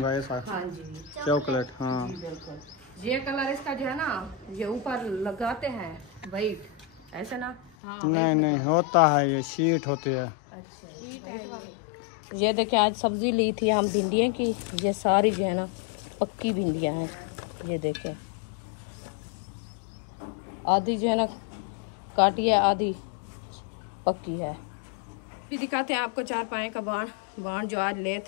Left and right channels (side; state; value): right; drops out; at 7.7 s